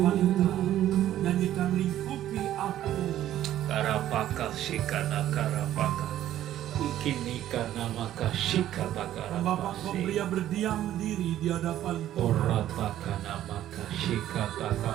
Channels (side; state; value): left; quieter; 12.5 dB